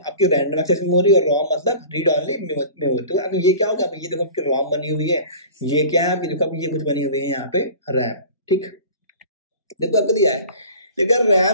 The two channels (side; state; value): both; inverted; correlation -0.40